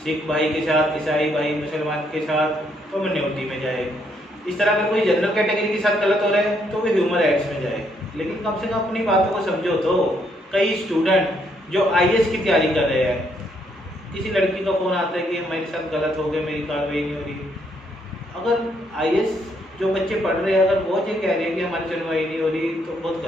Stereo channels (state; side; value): normal; both; correlation 0.72